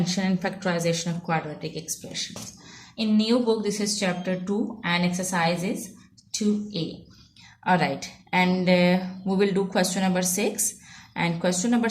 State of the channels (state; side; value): identical; both; correlation 1.00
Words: and factorization of quadratic expressions. In new book this is chapter 2 and exercise is 2a. Alright, and we will do question number 6, and question number